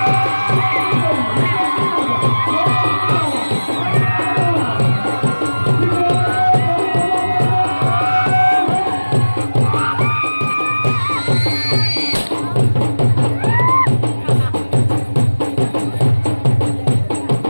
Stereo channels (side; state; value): both; inverted; correlation -1.00